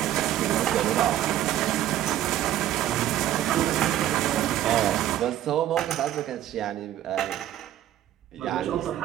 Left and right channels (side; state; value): left; quieter; 12.4 dB